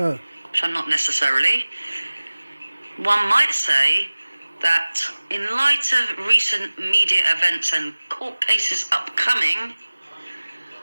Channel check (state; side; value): inverted; both; correlation -1.00